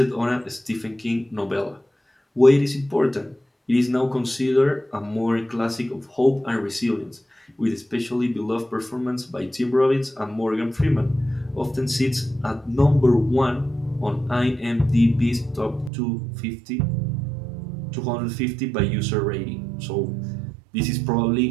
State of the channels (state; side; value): drops out; left; at 15.9 s